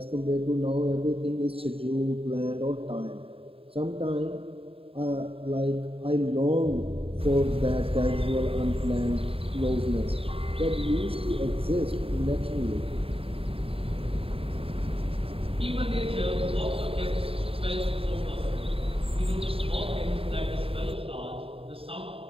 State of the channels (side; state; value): left; late; 0.27 ms